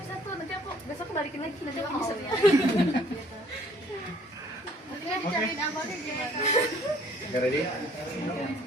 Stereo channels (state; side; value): normal; both; correlation 0.59